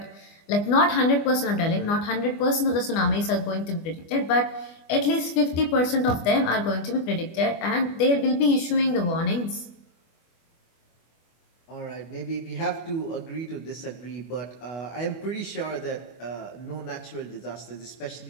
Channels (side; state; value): right; late; 25 ms